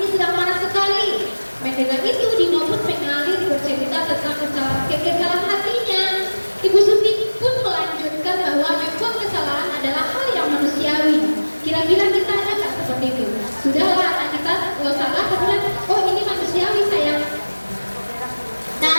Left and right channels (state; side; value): inverted; both; correlation -1.00